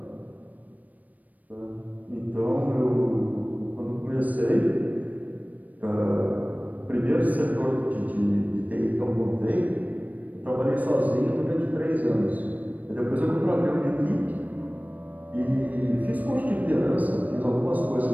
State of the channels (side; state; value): left; late; 0.077 ms